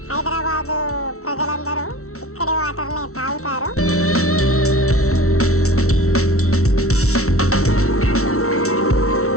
హైదరాబాదు ప్రజలందరూ ఇక్కడి వాటర్ని తాగుతారు.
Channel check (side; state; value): right; late; 0.63 ms